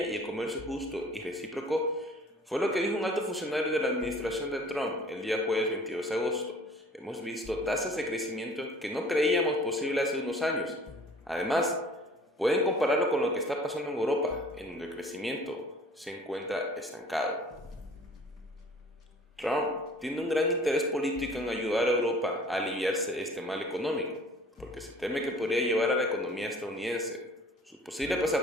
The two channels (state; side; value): normal; both; correlation 0.50